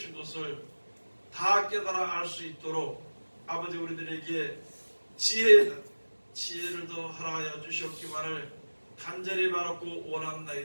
것을 다 깨달아 알 수 있도록 아버지 우리들에게 지혜를 더 허락하여 주셨기만을 간절히 바라고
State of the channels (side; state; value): both; inverted; correlation -1.00